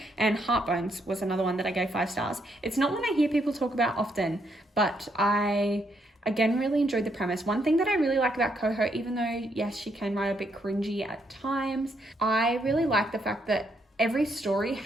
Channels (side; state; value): both; normal; correlation 0.75